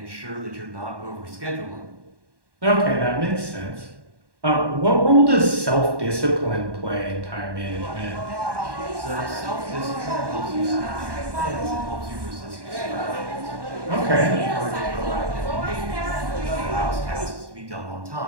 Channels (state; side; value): late; left; 1.1 ms